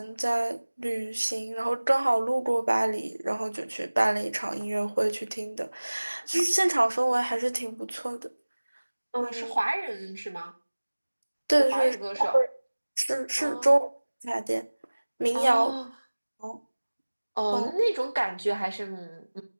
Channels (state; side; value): inverted; both; correlation -1.00